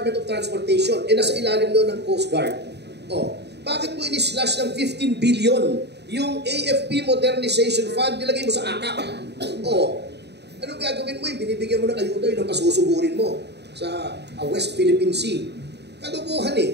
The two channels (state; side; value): late; left; 0.49 ms